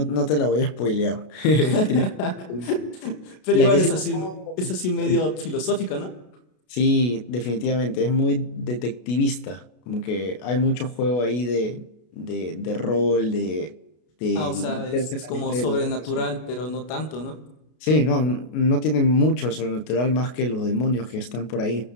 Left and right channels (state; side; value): late; right; 33 ms